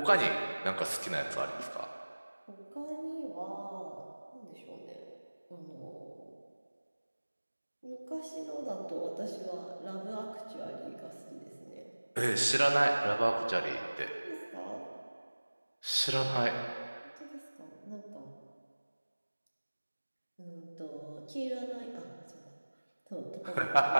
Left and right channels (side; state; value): both; inverted; correlation -1.00